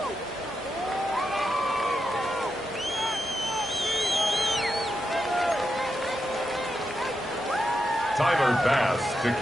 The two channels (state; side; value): normal; both; correlation 0.86